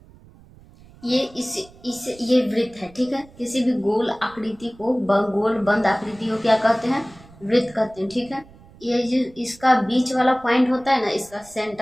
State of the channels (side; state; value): right; noise; rumble, 24 dB below the sound